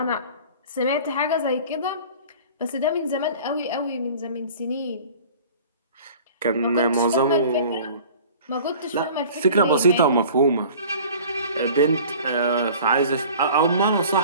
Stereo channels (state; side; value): inverted; both; correlation -0.44